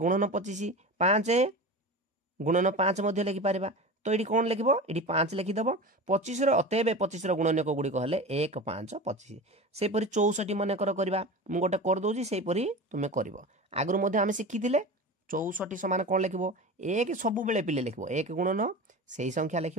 25 5 गुणन 5 मध्य लिखि पारिबा तो ये कौन लिख ये 5 लिखिदेव 25 अतएव 25 गुणनीयक गुड़िक हेले 1 5 25 सेपरी 64 मनकर करवा मुझे गोटे करदे सेपरी तुम्हें कर आगुरी आम शिखी 64 समान कौन लिख 1 सब बेले पिले लिख 1 गुणन से संख्या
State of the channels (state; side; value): normal; both; correlation 0.30